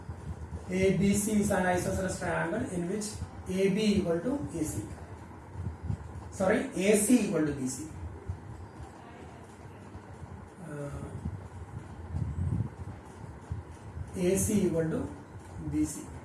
ABC is an isosceles triangle in which AB equal to AC. Sorry, AC equal to BC. AC equal to BC.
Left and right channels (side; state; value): both; identical; correlation 1.00